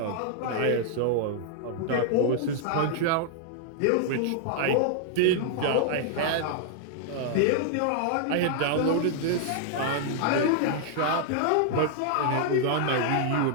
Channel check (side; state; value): both; different; correlation -0.01